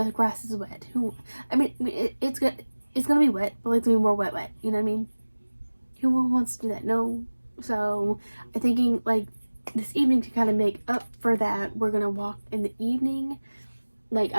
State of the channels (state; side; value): inverted; both; correlation -1.00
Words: grass is wet. It's gonna be wet, but it's gonna be more wet. You know what I mean? Who wants to do that? No. So I'm thinking like this evening to kind of make up for that, we're gonna walk in the evening. Like,